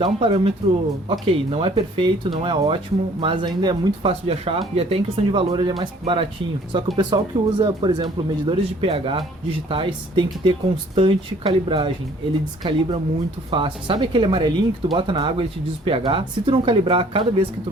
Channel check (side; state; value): both; normal; correlation 0.56